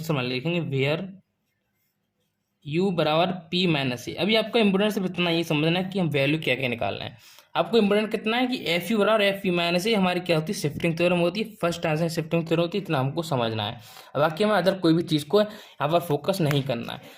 मान लिया। लिखेंगे वेयर यू बराबर पी माइनस ए। अभी आपका इंपोर्टेंट सिर्फ इतना ये समझना है कि हम वैल्यू क्या क्या निकालना है। आपको इंपोर्टेंट कितना है कि एफ यू बराबर एफ पी माइनस ए हमारी क्या होती है, शिफ्टिंग थ्योरम होती है, फर्स्ट आंसर शिफ्टिंग थ्योरम होती है, इतना हमको समझना है। अब बाकी हमें अदर कोई भी चीज़ को यहाँ पर फोकस नहीं करना है।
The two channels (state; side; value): identical; both; correlation 1.00